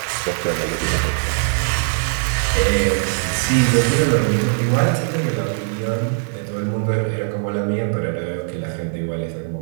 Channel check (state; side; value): silent; left; digital silence